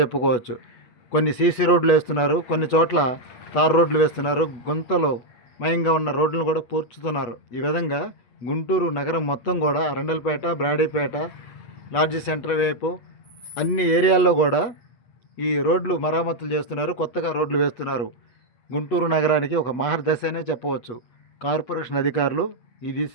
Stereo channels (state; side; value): late; right; 8.2 ms